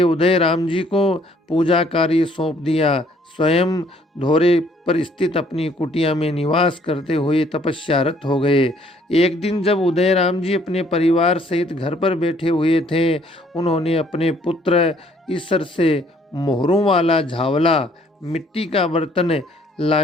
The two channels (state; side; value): normal; both; correlation 0.63